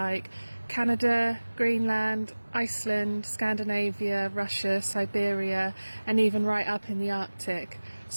Canada, Greenland, Iceland, Scandinavia, Russia, Siberia and even right up in the Arctic.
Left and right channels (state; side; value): inverted; both; correlation -1.00